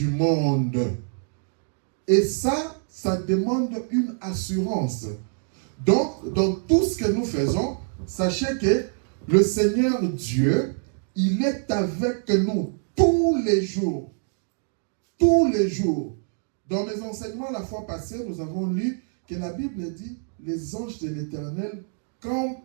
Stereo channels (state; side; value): silent; left; 58 dB below the other